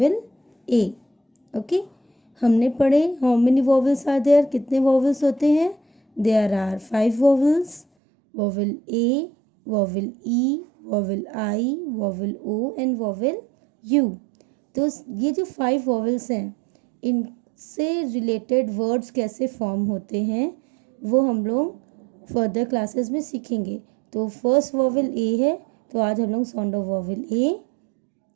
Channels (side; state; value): left; drops out; at 7.9 s